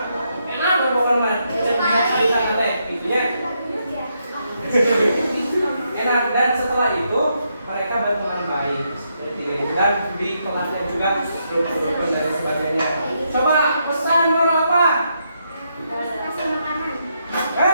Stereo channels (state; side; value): inverted; both; correlation -0.79